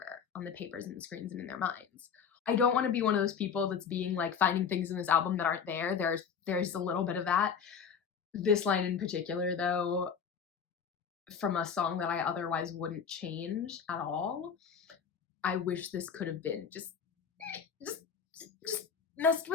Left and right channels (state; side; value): quieter; right; 6.8 dB